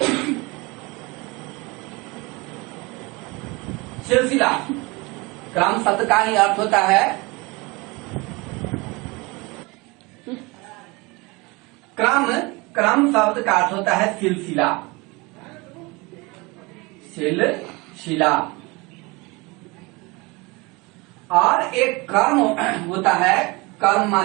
सिलसिला, क्रम शब्द का ही अर्थ होता है क्रम, क्रम शब्द का अर्थ होता है सिलसिला, सिलसिला। और एक कर्म होता है, कर्म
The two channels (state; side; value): quieter; left; 25.4 dB